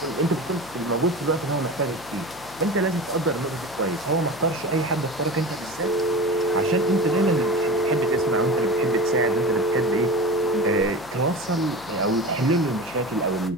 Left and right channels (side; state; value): left; noise; hum, 21 dB below the sound